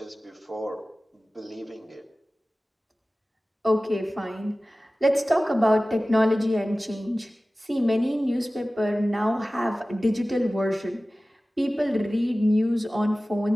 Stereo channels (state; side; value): normal; both; correlation 0.97